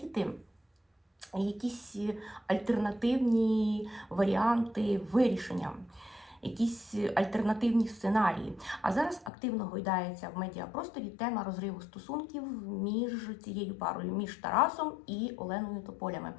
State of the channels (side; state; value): right; drops out; at 9.3 s